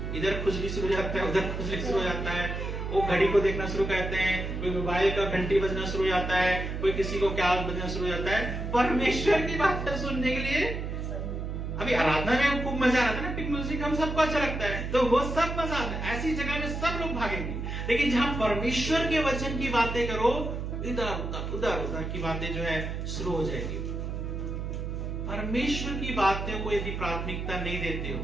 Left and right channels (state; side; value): noise; right; hum, 4 dB below the sound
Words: इधर खुजली शुरू हो जाता है, उधर खुजली शुरू हो जाता है, वो घड़ी को देखना शुरू करते हैं, कोई मोबाइल का घंटी बजना शुरू हो जाता है, कोई किसी को क्या बजना शुरू हो जाता है परमेश्वर की बातें सुनने के लिए। अभी आराधना में खूब मजा आता है ना, म्यूजिक हम सबको अच्छा लगता है, तो वो सब मजा आता है, ऐसी जगह में सब लोग भागेंगे। लेकिन जहां परमेश्वर के वचन की बातें करो, इधर उधर की बातें जो है शुरू हो जाएगी। परमेश्वर की बातों को यदि प्राथमिकता नहीं देते हो,